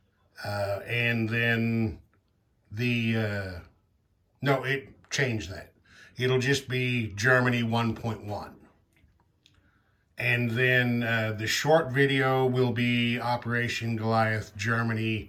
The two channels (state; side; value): identical; both; correlation 1.00